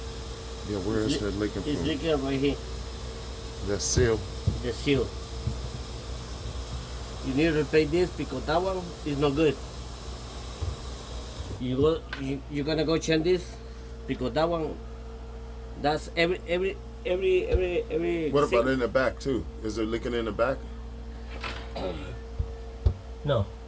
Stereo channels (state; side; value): identical; both; correlation 1.00